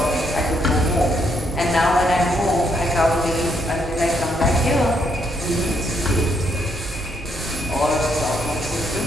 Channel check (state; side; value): normal; both; correlation 0.74